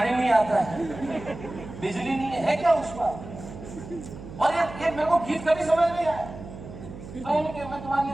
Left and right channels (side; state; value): right; noise; hum, 13 dB below the sound